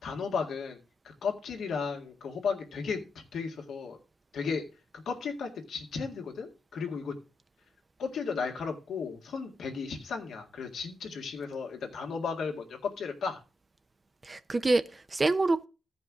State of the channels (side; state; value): both; normal; correlation 0.85